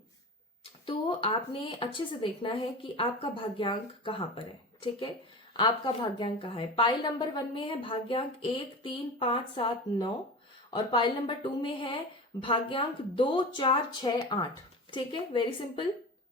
तो आपने अच्छे से देखना है कि आपका भाग्यांक कहाँ पर है। ठीक है, आपका भाग्यांक कहाँ है। पाइल नंबर 1 में है भाग्यांक 1, 3, 5, 7, 9, और पाइल नंबर 2 में है भाग्यांक 2, 4, 6, 8। ठीक है, वेरी सिंपल।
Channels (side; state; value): both; normal; correlation 0.31